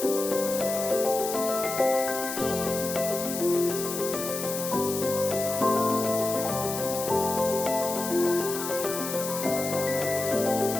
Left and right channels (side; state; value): left; noise; hiss, 6 dB below the sound